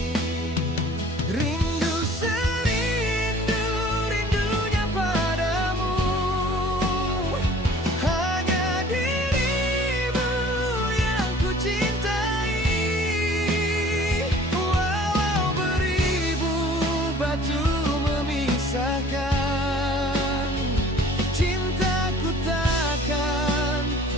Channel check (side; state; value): both; normal; correlation 0.50